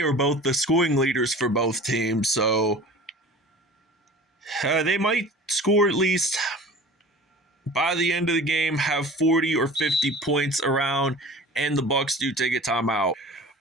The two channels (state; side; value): normal; both; correlation 0.40